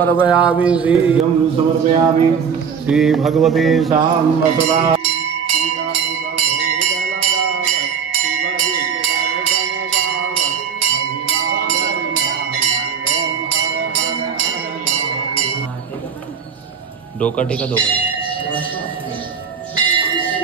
श्रीयं समर्पयामि श्री भगवते साम्बसदा. डोका टेका दोघं.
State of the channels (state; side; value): quieter; left; 6.7 dB